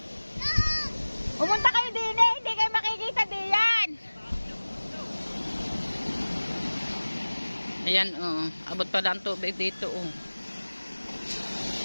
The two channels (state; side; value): inverted; both; correlation -1.00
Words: Pumunta kayo din eh, hindi kayo makikita diyan. Ayan, oh, abot pala ang tubig dito, oh.